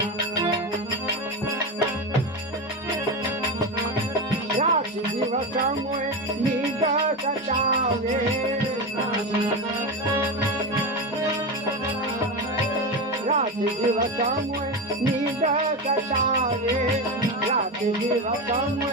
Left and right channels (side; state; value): both; normal; correlation 0.18